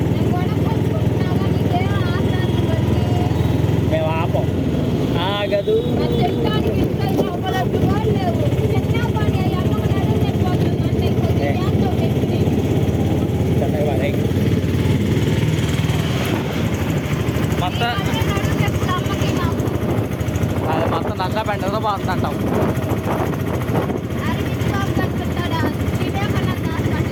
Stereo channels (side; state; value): both; identical; correlation 1.00